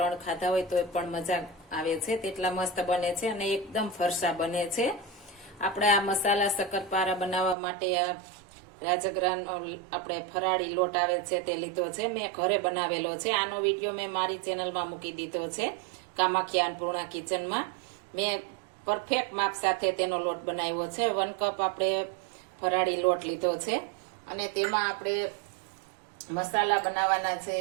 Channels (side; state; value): left; drops out; at 7.6 s